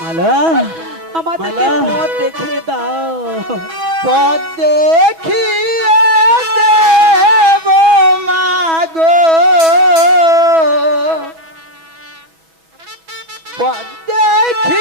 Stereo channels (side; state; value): left; late; 6.1 ms